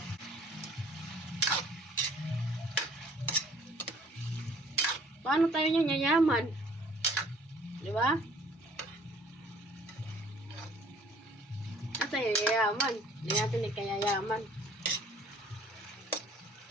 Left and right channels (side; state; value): both; normal; correlation 0.56